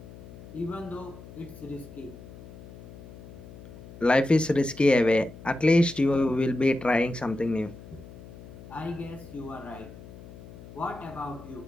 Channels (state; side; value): noise; left; hum, 16 dB below the sound